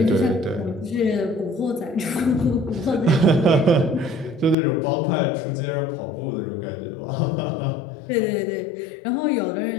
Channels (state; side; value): drops out; right; at 4.5 s